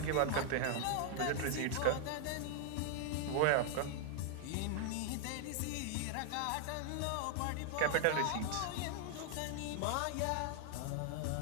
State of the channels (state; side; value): different; both; correlation 0.00